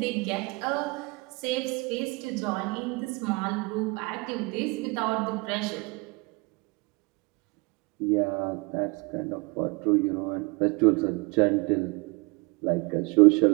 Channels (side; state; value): left; quieter; 27.6 dB